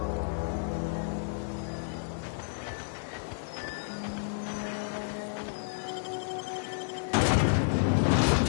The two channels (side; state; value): right; silent; digital silence